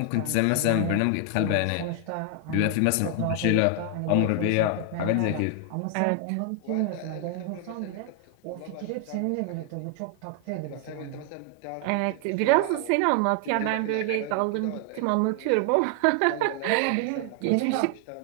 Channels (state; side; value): different; both; correlation 0.00